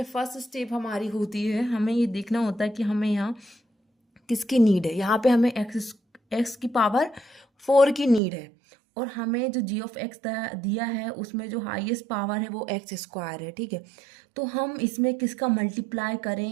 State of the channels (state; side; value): drops out; left; at 8.2 s